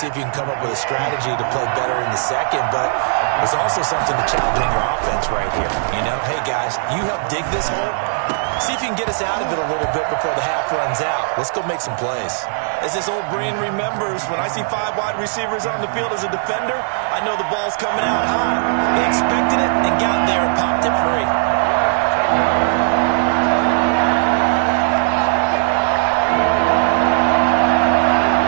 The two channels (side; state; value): left; silent; 67 dB below the other